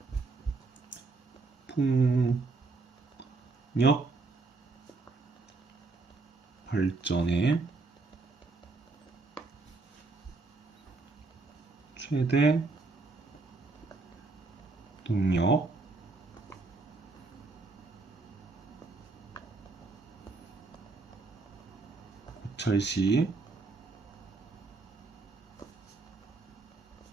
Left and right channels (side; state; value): left; quieter; 3.7 dB